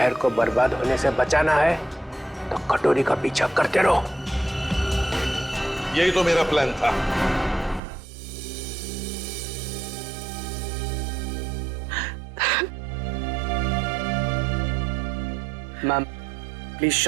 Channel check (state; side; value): drops out; left; at 7.8 s